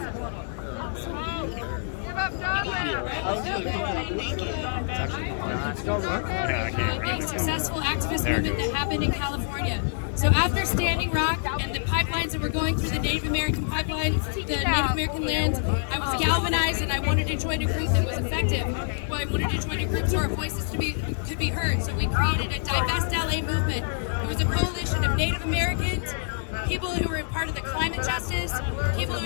Yeah, I can't. Successful activist movement that happened in California. So after Standing Rock and the pipelines that were going through the Native American pipeline, the Native American land, I was galvanized and I wanted to join a group that was effective. Well, I wanted to join a group so our voices could be heard. So we created a Divest LA movement. It was a coalition of Native Americans, people who were part of the climate justice, people who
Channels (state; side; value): silent; right; digital silence